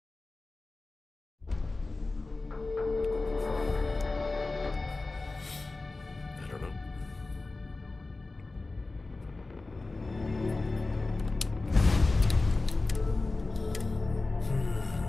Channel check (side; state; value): right; quieter; 3.4 dB